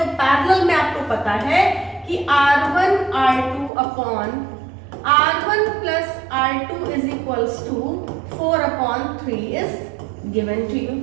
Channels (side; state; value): left; drops out; at 3.7 s